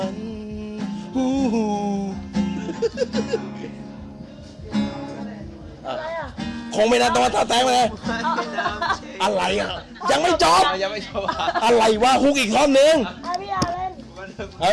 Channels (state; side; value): identical; both; correlation 1.00